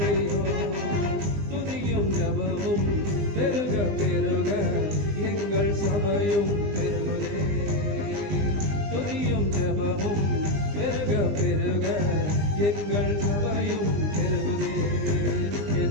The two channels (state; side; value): late; left; 20 ms